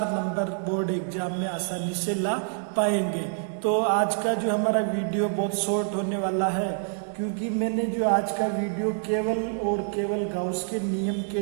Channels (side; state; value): left; silent; digital silence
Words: नंबर बोर्ड एग्जाम में आसानी से ला पाएंगे। तो आज का जो हमारा वीडियो बहुत शॉर्ट होने वाला है, क्योंकि मैंने जो आज का वीडियो केवल गाउस के नियम